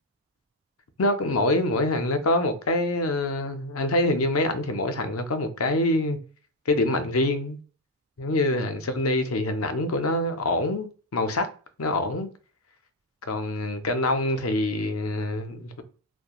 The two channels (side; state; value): both; normal; correlation 0.02